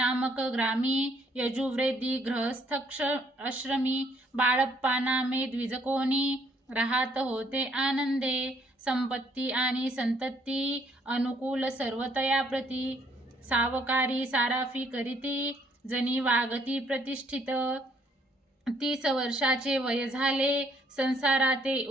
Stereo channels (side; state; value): both; normal; correlation 0.66